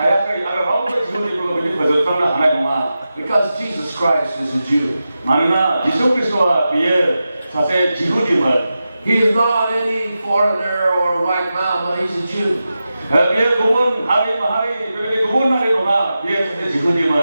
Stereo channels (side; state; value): both; inverted; correlation -0.92